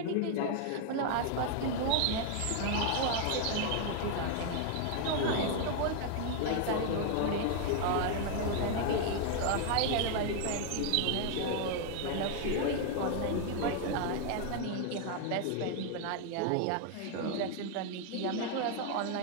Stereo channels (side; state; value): both; different; correlation 0.00